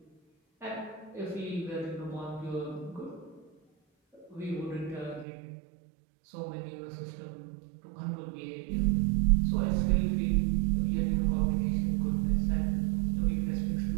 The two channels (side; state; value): left; drops out; at 5.2 s